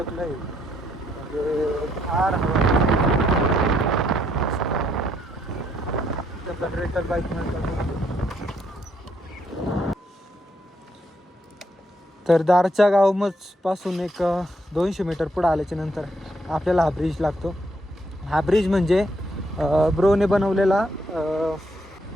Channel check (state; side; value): normal; both; correlation 0.73